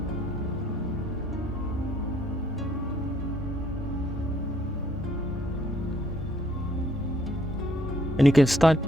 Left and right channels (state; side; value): normal; both; correlation 0.66